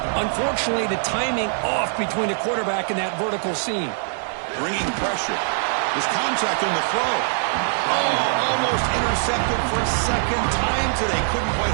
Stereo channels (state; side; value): silent; left; digital silence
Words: Unfortunately, the timing off between the quarterback and that vertical seam. Bringing pressure. There's contact on the throw. Oh, almost intercepted for a 2nd time today. Couldn't quite